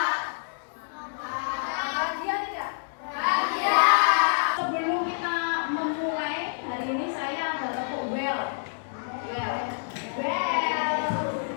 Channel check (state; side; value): silent; right; digital silence